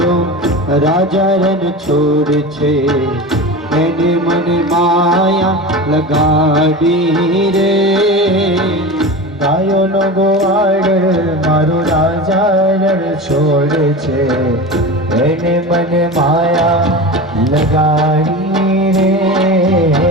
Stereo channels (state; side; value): normal; both; correlation 0.29